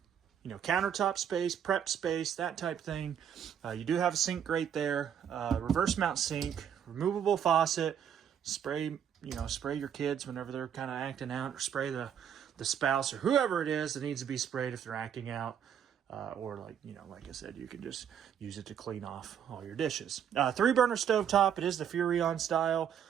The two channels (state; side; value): quieter; left; 8.7 dB